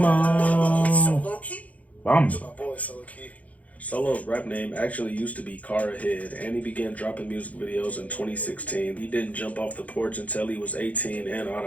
Solowke? Bamba. My boy Solowke. Solo's rap name actually used to be Car Ahead, and he began dropping music videos in 2016. He didn't jump off the porch until he was 18 and out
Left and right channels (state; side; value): late; right; 0.070 ms